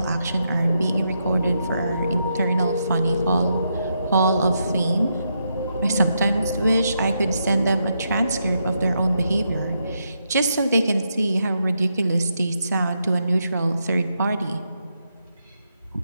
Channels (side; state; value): both; inverted; correlation -0.81